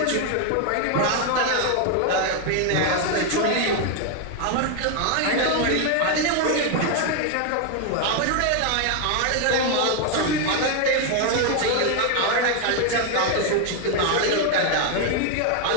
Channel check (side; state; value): both; different; correlation 0.01